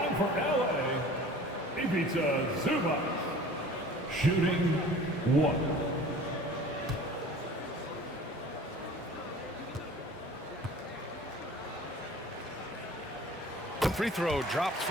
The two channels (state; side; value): normal; both; correlation 0.45